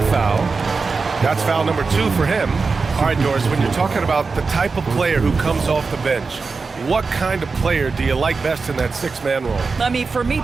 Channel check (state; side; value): quieter; left; 4.5 dB